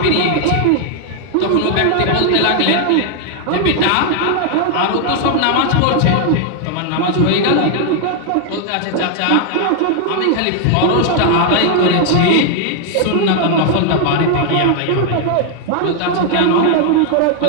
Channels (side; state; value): both; different; correlation 0.00